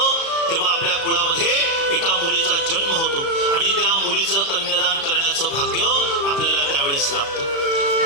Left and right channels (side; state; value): right; late; 36 ms